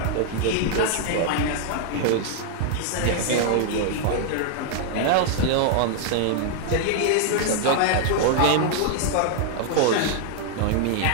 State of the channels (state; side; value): different; both; correlation 0.00